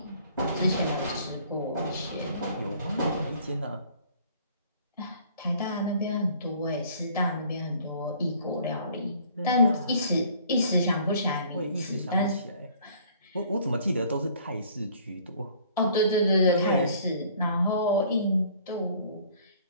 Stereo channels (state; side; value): inverted; both; correlation -0.55